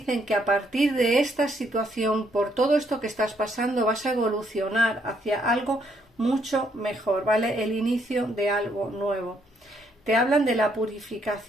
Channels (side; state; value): both; normal; correlation 0.71